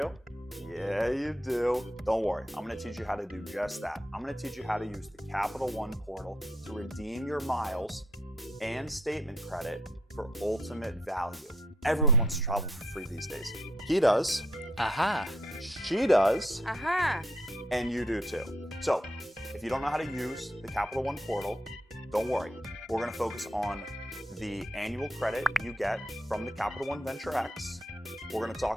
Yeah, you do. Don't worry, I'm going to teach you how to do just that. I'm going to teach you how to use the Capital One portal to redeem your miles and statement credit for ultimate value. Everyone wants to travel for free these days. He does. Aha. She does. Aha. And you do too. So if you don't know how to use the Capital One portal, don't worry. We're going to focus on the annual credit you get from the Capital One Venture X. We're going to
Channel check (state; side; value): normal; both; correlation 0.73